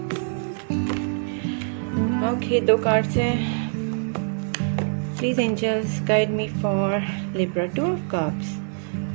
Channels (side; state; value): left; silent; 62 dB below the other